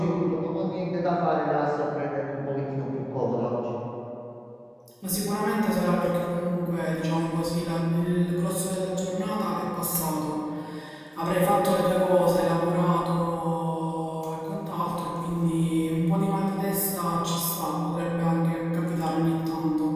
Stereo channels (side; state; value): both; identical; correlation 1.00